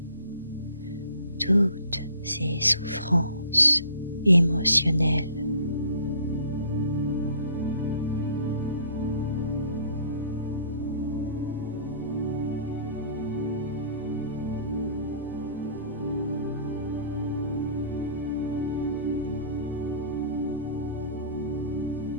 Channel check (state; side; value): inverted; both; correlation -0.52